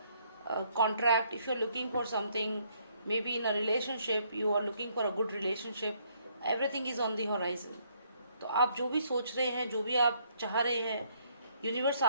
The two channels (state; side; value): inverted; both; correlation -0.68